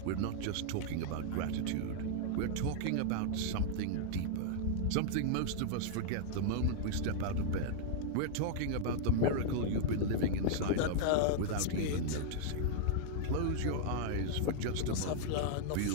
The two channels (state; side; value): different; both; correlation -0.01